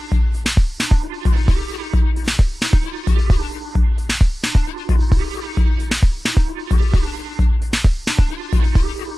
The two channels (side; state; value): both; normal; correlation 0.97